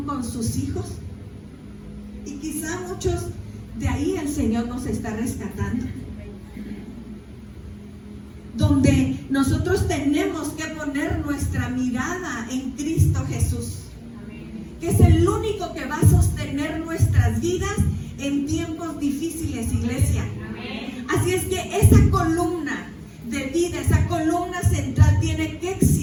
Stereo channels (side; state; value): both; identical; correlation 1.00